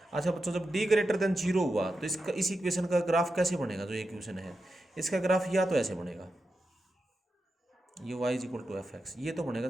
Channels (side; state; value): both; normal; correlation 0.89